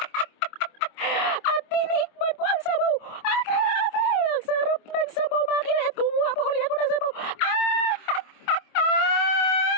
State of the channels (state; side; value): late; right; 25 ms